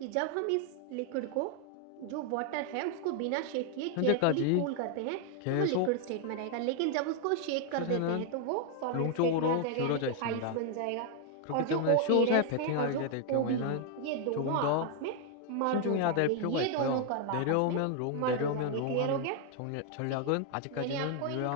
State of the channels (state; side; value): different; both; correlation 0.00